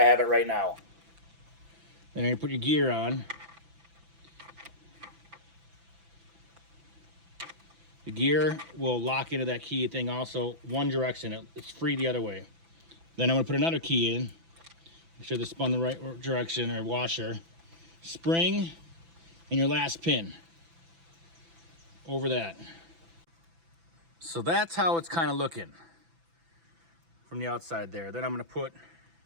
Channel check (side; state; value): left; late; 6.0 ms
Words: have it right now. Then you put your gear on. The gear will lock into that key thing also one direction. It's free the other way. Then I'm gonna put another key in. Make sure this spun the right direction or washer. Spring and your last pin over that. So that's how it's kind of looking from the outside there. Then I'm gonna put